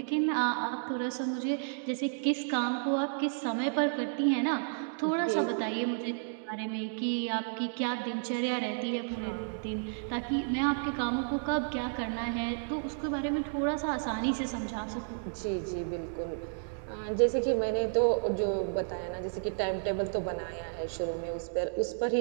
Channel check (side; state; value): left; silent; digital silence